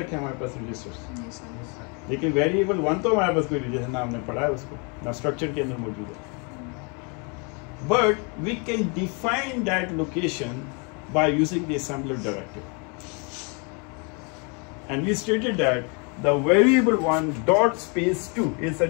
है हमारे पास रजिस्टर्स. लेकिन वेरिएबल 1 तो हमारे पास कोई रजिस्टर ना हमने पढ़ा है उसको, ना स्ट्रक्चर के अंदर मौजूद है. But we can define that location by using the assembler directive. And we stated that the variable 1 dot space 2 is a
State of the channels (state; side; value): quieter; right; 34.1 dB